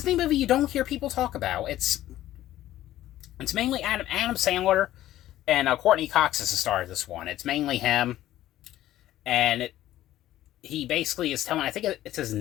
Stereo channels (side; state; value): right; quieter; 13.9 dB